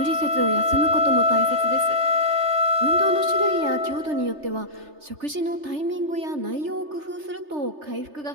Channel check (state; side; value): late; left; 3.3 ms